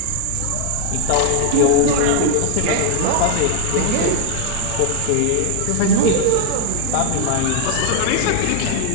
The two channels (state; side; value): different; both; correlation 0.00